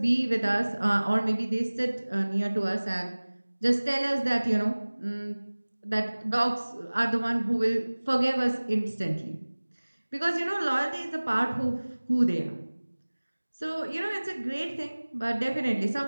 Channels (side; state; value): both; inverted; correlation -1.00